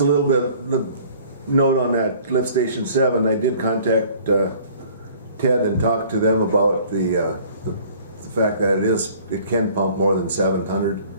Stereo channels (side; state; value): both; inverted; correlation -0.52